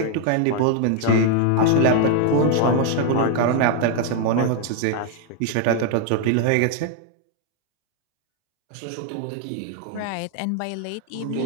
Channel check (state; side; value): different; both; correlation 0.00